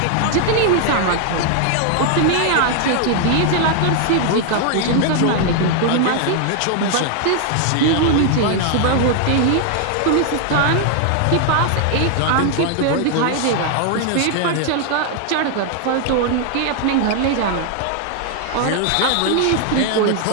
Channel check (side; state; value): both; different; correlation 0.00